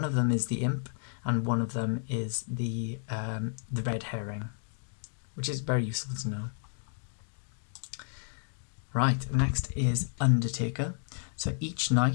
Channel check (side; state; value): right; silent; digital silence